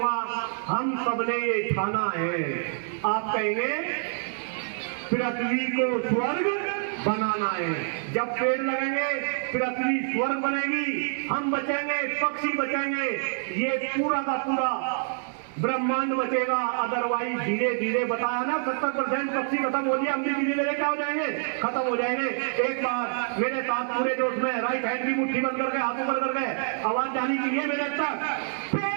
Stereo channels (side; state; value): left; silent; 60 dB below the other